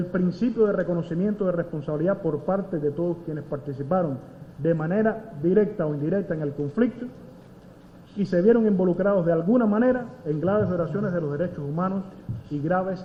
principio de reconocimiento de responsabilidad por parte de todos quienes participaron de manera directa o indirecta en el conflicto y se vieron involucrados de alguna manera en graves violaciones de los derechos humanos y graves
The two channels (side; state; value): both; identical; correlation 1.00